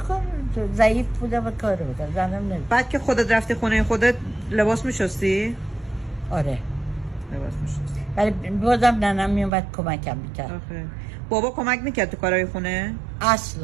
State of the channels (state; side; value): drops out; left; at 9.5 s